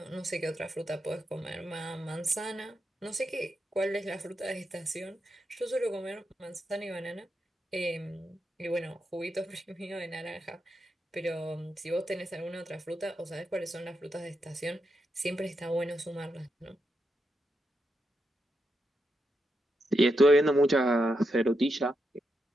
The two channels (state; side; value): normal; both; correlation 0.84